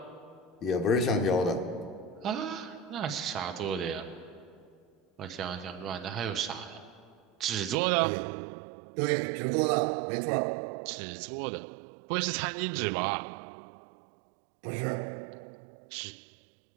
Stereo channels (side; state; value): left; drops out; at 7.8 s